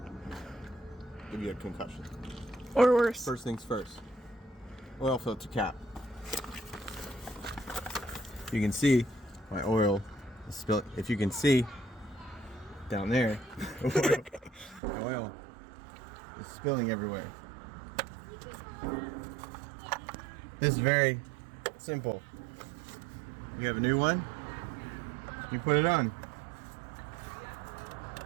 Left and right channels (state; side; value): drops out; left; at 14.8 s